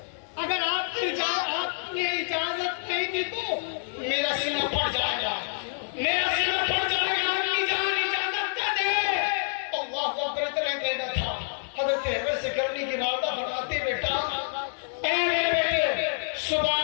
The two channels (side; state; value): right; silent; digital silence